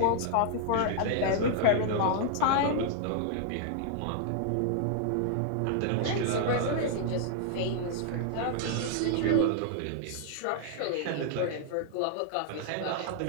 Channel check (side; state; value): both; different; correlation -0.01